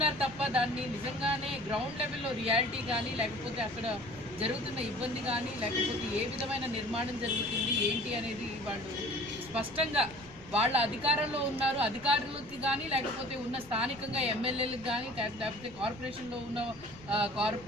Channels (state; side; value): noise; left; rumble, 20 dB below the sound